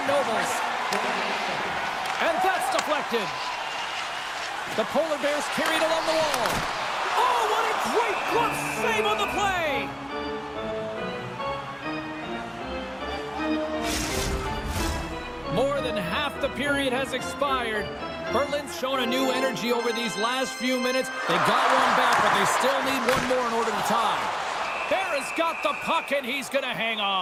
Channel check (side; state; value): both; identical; correlation 1.00